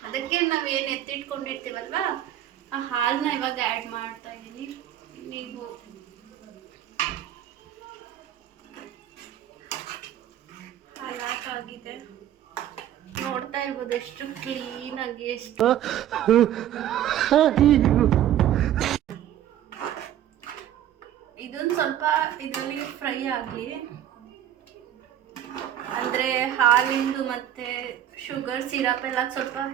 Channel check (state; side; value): quieter; left; 11.4 dB